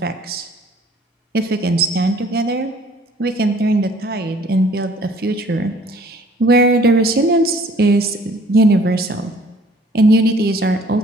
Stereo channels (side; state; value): both; normal; correlation 0.55